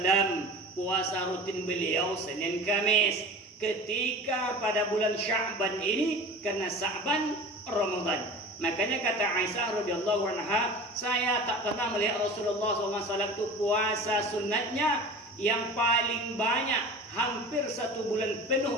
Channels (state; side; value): normal; both; correlation 0.37